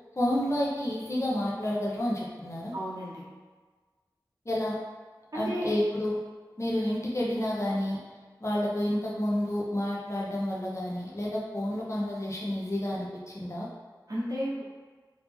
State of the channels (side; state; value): both; normal; correlation 0.92